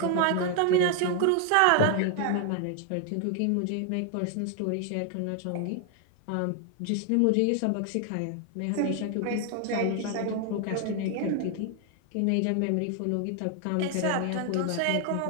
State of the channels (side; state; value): both; different; correlation 0.00